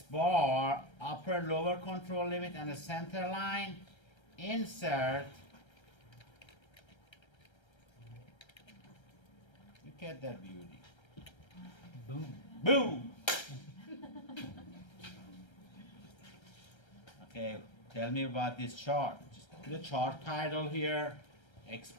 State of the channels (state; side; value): late; right; 1.3 ms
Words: bar, upper lower control limit, and the center line. Insert. Look at that beauty. Boom. Boom! Okay, tell me about this chart. Just put the chart title here, X